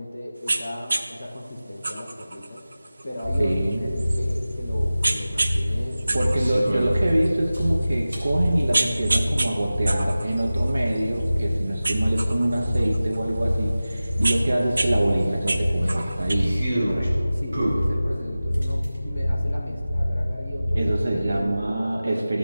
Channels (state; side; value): inverted; both; correlation -0.96